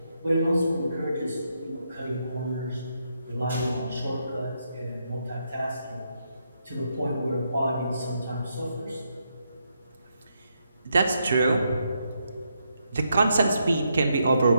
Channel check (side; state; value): both; inverted; correlation -0.80